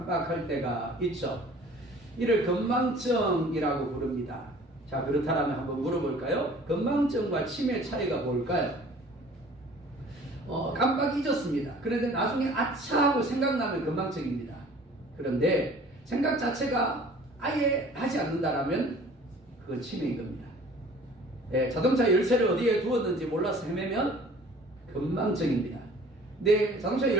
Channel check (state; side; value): normal; both; correlation 0.49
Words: 때가 있죠. 이를 건망증이라고 부릅니다. 자, 그렇다면 한번 물어볼까요? 건망증과 치매 차이가 뭘까요? 깜빡 잊었습니다. 그런데 나중에 아차 하고 생각나면 건망증입니다. 그런데 생각 자체가 아예 하지 않는다라면 그건 치매인 겁니다. 자동차 열쇠를 어디에 두었는지 몰라서 헤매면 건망증입니다. 내 자동차